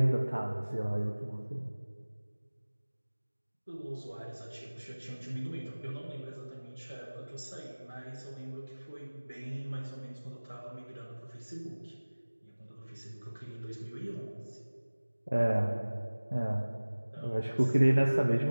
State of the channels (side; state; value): both; inverted; correlation -1.00